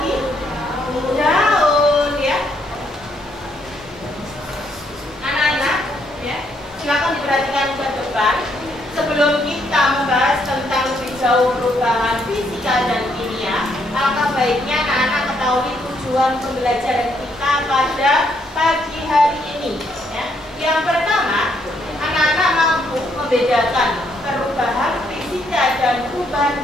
Daun ya. Anak-anak ya, silakan diperhatikan ke depan. Sebelum kita membahas tentang lebih jauh perubahan fisika dan kimia, alangkah baiknya anak-anak ketahui tujuan pembelajaran kita pada pagi hari ini. Ya. Yang pertama, anak-anak mampu membedakan perubahan fisika dan perubahan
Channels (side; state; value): both; normal; correlation 0.72